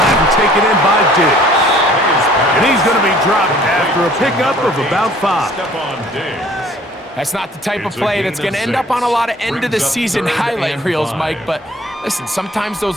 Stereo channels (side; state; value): both; normal; correlation 0.54